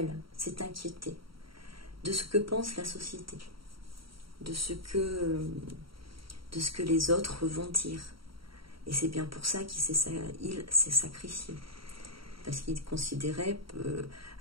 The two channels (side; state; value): left; late; 0.74 ms